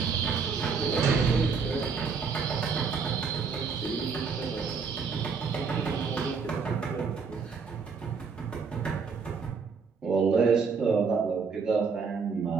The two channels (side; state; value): left; quieter; 5.4 dB